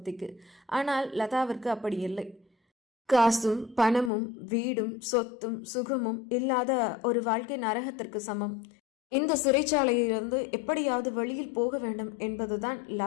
ஆனால் லதாவிற்கு அப்படி இல்லை. காசும் பணமும் வீடும் சொத்தும் சுகமும் இல்லாத ஒரு வாழ்க்கை நரகத்திற்கு சமம். இந்த சிறைச்சாலையிலிருந்து எப்படியாவது வெளியில் போக வேண்டும் என்பதுதான்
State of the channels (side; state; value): right; drops out; at 4.1 s